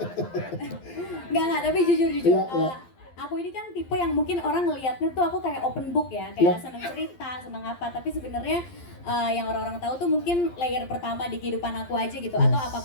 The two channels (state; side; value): late; right; 12 ms